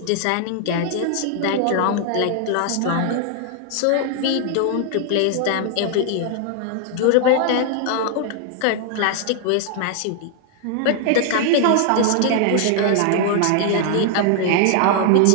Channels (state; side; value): different; both; correlation 0.00